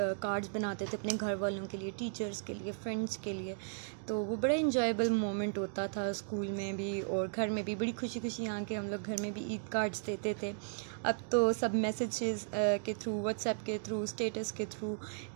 कार्ड्स बनाते थे अपने घर वालों के लिए, टीचर्स के लिए, फ्रेंड्स के लिए। तो वो बड़ा इंजॉयबल मोमेंट होता था, स्कूल में भी और घर में भी बड़ी खुशी खुशी यहाँ के हम लोग घर में भी ईद कार्ड्स देते थे। अब तो सब मैसेजेस के थ्रू, व्हाट्सएप के थ्रू, स्टेटस के थ्रू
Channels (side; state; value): left; silent; digital silence